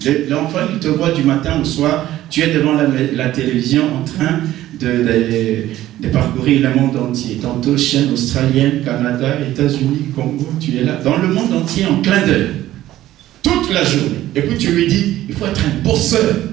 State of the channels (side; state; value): left; quieter; 14.3 dB